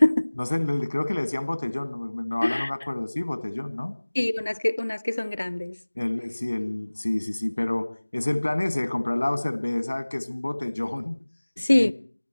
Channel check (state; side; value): inverted; both; correlation -1.00